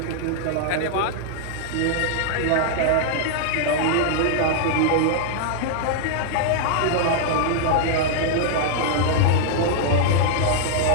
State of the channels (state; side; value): different; both; correlation -0.01